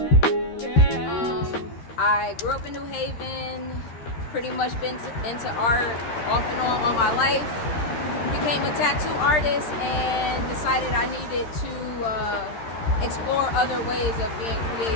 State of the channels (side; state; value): right; late; 13 ms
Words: I grew up in New Haven, pretty much been into art off and on my life. Became a tattoo artist and decided I needed to explore other ways of being